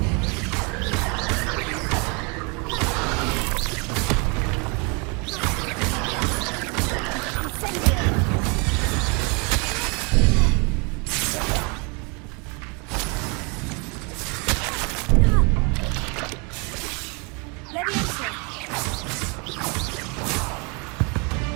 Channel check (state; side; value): quieter; left; 32.0 dB